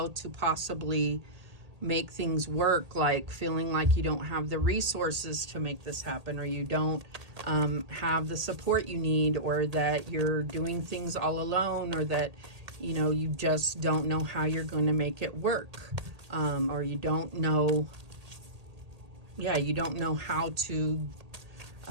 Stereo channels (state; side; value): late; left; 1.8 ms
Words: to possibly make things work, like feeling like you don't have the resources to make this happen, or you don't have the support you need, or that you're doing things all alone, or that you just don't know how you're going to make it work, or you don't know how to